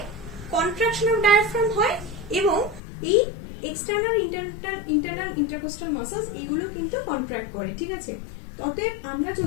কন্ট্রাকশন অফ ডায়াফ্রাম হয়, এবং এই এক্সটার্নাল ইন্টারনাল ইন্টারকোস্টাল মাসলস এইগুলো কিন্তু কন্ট্রাক্ট করে, ঠিক আছে? অতএব আমরা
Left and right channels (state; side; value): drops out; right; at 2.8 s